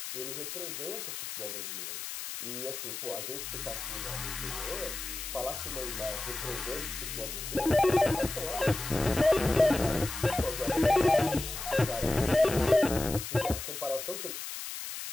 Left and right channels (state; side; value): noise; left; hiss, 7 dB below the sound